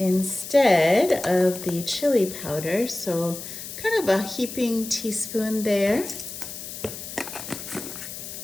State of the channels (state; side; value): noise; left; hiss, 10 dB below the sound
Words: of the chili powder. So kind of a heaping teaspoon there.